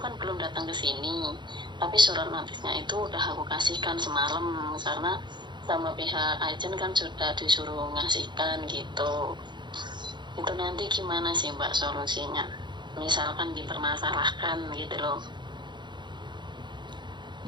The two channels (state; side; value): late; left; 0.22 ms